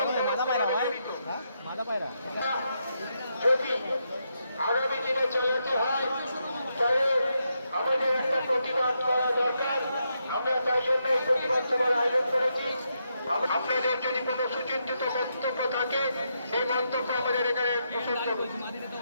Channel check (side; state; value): both; inverted; correlation -0.81